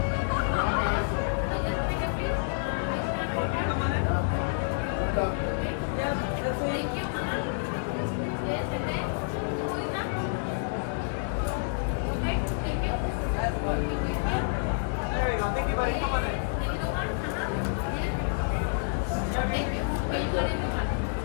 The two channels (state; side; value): silent; right; 59 dB below the other